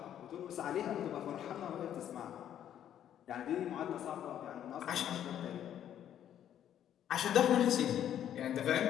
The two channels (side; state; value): right; quieter; 10.4 dB